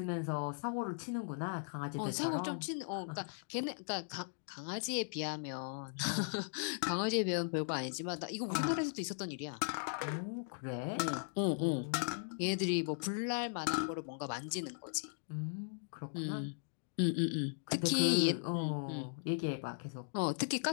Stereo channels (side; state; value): right; silent; digital silence